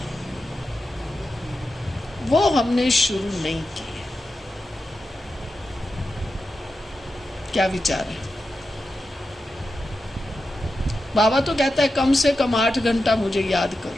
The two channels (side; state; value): both; normal; correlation 0.90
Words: वो हमने शुरू नहीं की है। क्या विचार है? बाबा तो कहता है कम से कम 8 घंटा मुझे याद